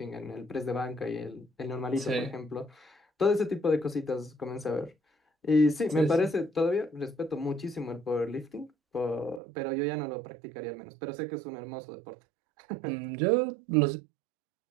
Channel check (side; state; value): left; drops out; at 9.4 s